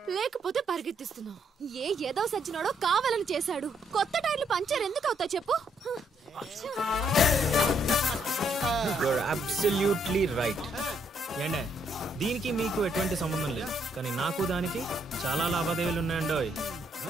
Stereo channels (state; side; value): normal; both; correlation 0.73